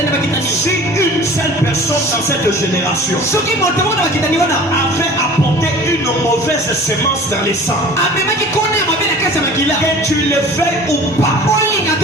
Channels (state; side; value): normal; both; correlation 0.43